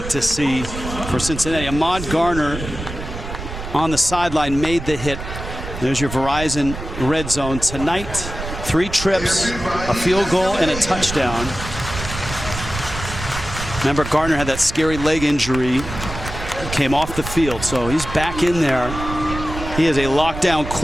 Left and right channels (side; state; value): right; noise; rumble, 9 dB below the sound